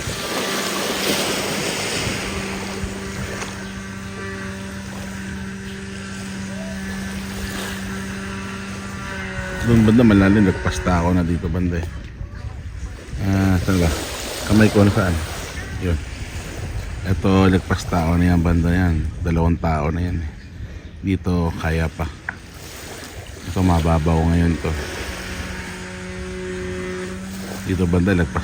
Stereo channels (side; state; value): both; identical; correlation 1.00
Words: banda malalim, nagpasta ako na dito banda eh. Saan ba? Kamay ko na saan? Yun. Ito, nagpasta ako na yan banda yan. 2 tao na yan eh. Dito, kaya pa. Ito, mababaw ngayon to. Dito banda,